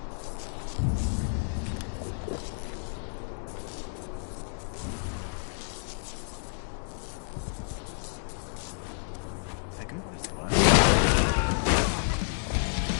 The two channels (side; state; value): right; silent; digital silence